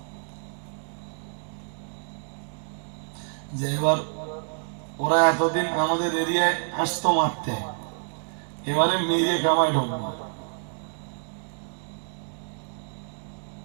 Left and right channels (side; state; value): left; silent; digital silence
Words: যে এবার ওরা এতদিন আমাদের এরিয়ায় আসতো মারতে, এবারে মেরে কামায় ঢুকবে।